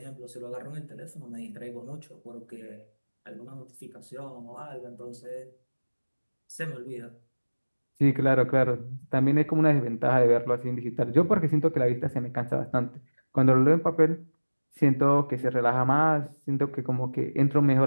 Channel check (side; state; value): both; inverted; correlation -1.00